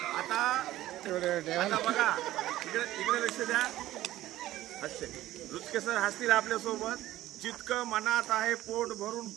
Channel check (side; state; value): left; quieter; 15.0 dB